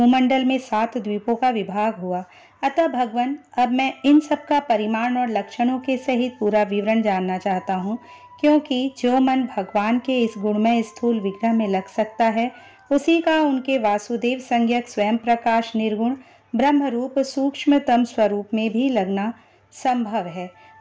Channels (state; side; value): identical; both; correlation 1.00